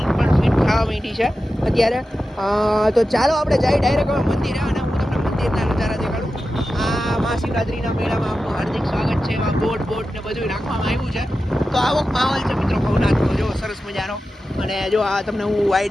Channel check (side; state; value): both; normal; correlation 0.92